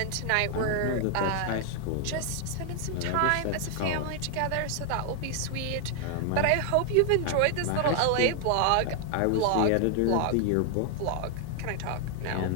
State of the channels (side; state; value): both; different; correlation 0.00